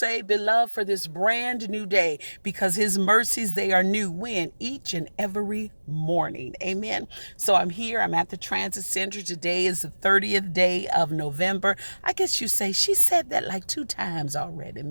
beloved, for this brand new day, because his mercies, they are new when each and every morning. Amen. So I'm here. I'm at the transit center. Today is the 30th day of November. I guess you say she said that like 2 times already,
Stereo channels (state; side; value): inverted; both; correlation -1.00